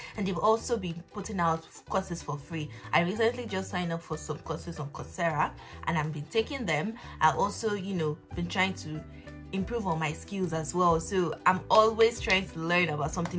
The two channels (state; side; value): identical; both; correlation 1.00